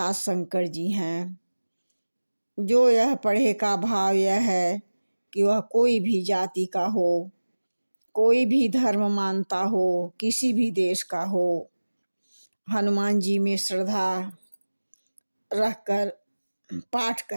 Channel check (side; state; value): both; inverted; correlation -1.00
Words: शंकर जी हैं। जो यह पढ़े का भाव यह है कि वह कोई भी जाति का हो, कोई भी धर्म मानता हो, किसी भी देश का हो, हनुमान जी में श्रद्धा रखकर पाठ